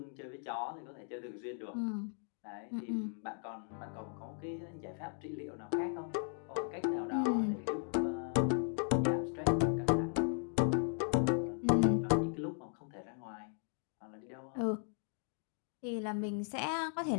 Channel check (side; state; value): right; silent; 53 dB below the other